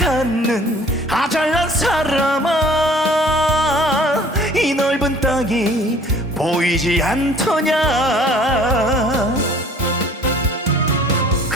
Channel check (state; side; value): normal; both; correlation 0.52